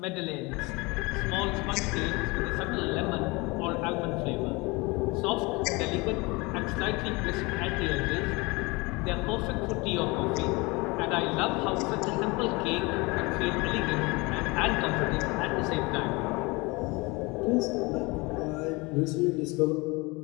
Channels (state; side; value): quieter; right; 25.4 dB